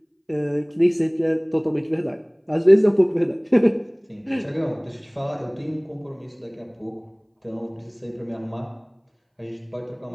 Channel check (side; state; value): both; identical; correlation 1.00